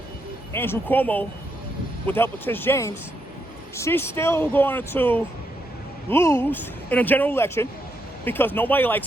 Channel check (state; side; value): normal; both; correlation 0.79